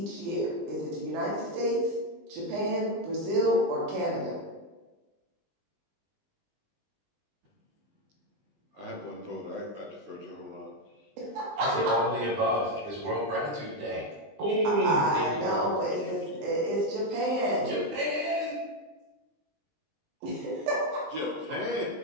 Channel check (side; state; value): left; late; 20 ms